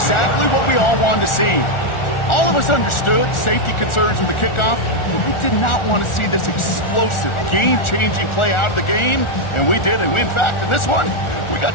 what we all wanted to see. All of us understood safety concerns with the kickoff, but we did not want to see this explosive, game-changing play out of the game, and we did. And in fact, in this one, we got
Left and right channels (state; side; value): late; right; 1.4 ms